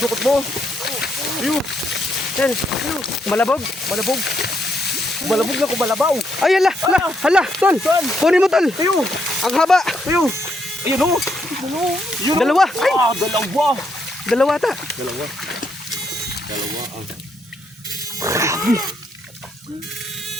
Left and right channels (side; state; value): both; normal; correlation 0.76